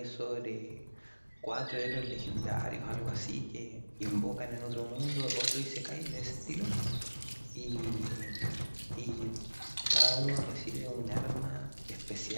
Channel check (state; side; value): inverted; both; correlation -1.00